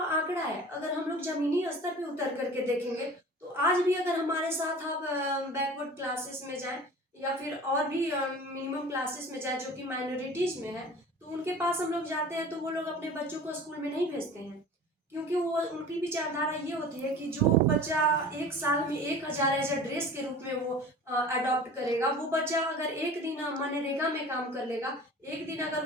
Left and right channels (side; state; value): both; normal; correlation 0.40